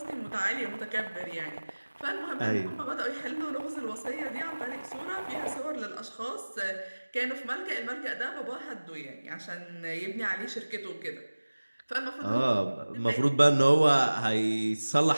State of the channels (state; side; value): inverted; both; correlation -1.00